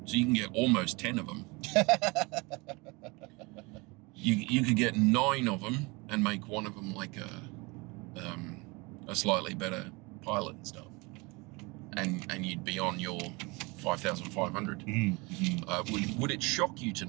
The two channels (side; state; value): left; quieter; 26.2 dB